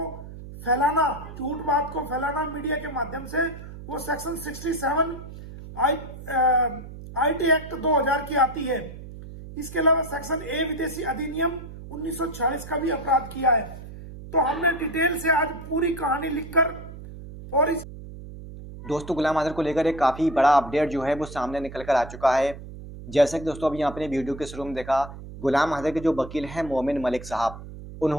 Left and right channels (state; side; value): noise; right; hum, 13 dB below the sound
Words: फैलाना, झूठ बात को फैलाना मीडिया के माध्यम से, वो सेक्शन 67 आईटी एक्ट 2000 की आती है। इसके अलावा सेक्शन ए विदेशी अधिनियम 1946 का भी अपराध किया है। तो हमने डिटेल से आज पूरी कहानी लिखकर और इस दोस्तों गुलाम आजर को लेकर एक काफ़ी बड़ा अपडेट जो है वो सामने निकल कर आ चुका है। जैसे कि दोस्तों अभी आपने वीडियो के शुरू में देखा, गुलाम आजर के जो वकील हैं मोमिन मलिक साहब,